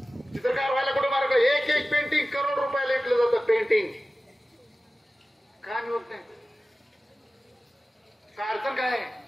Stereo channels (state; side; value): normal; both; correlation 0.96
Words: चित्रकार व्हायला कुठं मार्क? एक पेंटिंग करोड रुपयाला विकलं जातं. पेंटिंग का होत नाही? का अडचण काय?